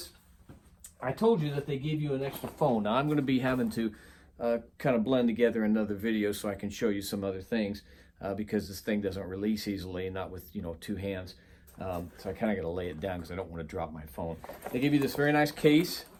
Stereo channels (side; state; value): both; identical; correlation 1.00